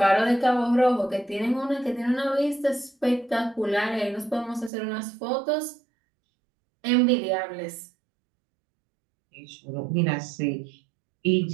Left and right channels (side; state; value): left; drops out; at 4.7 s